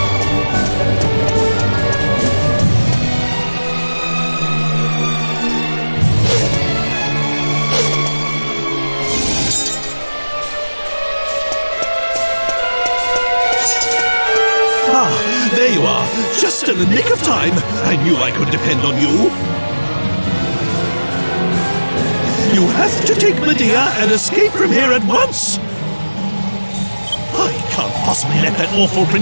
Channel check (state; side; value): inverted; both; correlation -1.00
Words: There you are, just in the nick of time. I knew I could depend on you. You have to take Medea and escape from here at once. I can't possibly let that awful